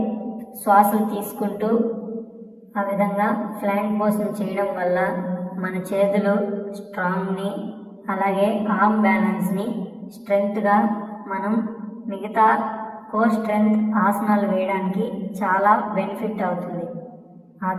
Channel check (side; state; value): both; identical; correlation 1.00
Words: శ్వాసలు తీసుకుంటూ ఆ విధంగా ఫ్లాంక్ పోస్ని చేయడం వల్ల మన చేతులు స్ట్రాంగ్ని అలాగే ఆర్మ్ బ్యాలెన్స్ని స్ట్రెంగ్త్గా మనం మిగతా కోర్ స్ట్రెంగ్త్ ఆసనాలు వేయడానికి చాలా బెనిఫిట్ అవుతుంది. ఆ